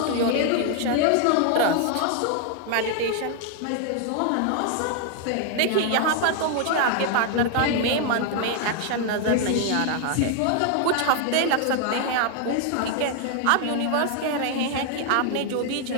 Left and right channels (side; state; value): both; different; correlation 0.00